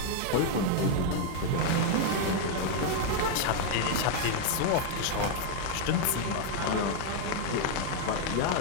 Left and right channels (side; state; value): both; different; correlation 0.00